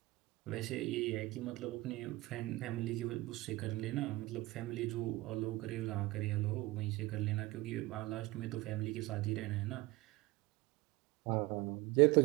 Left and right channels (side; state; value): left; quieter; 20.2 dB